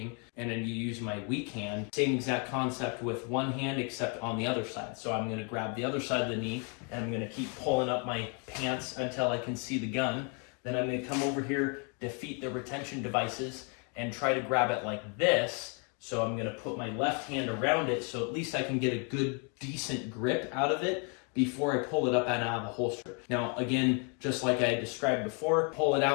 and then you use my weak hand, same exact concept with one hand except on the other side. So I'm gonna grab the other side of the knee and I'm gonna keep pulling up my pants until I can see the gun. Then I'm gonna come over here, defeat the retention devices, and try to grab it like this. So I'm gonna put my left hand around it so at least I can get a good, decent grip out of it before I pull it up and out of the holster. Now, again, just like I described before, pull it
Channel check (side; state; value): right; quieter; 37.1 dB